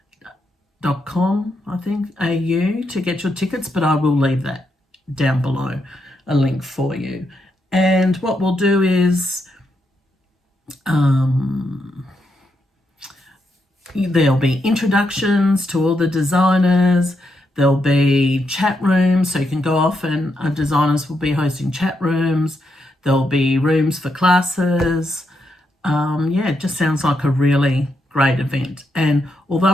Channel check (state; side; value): normal; both; correlation 0.81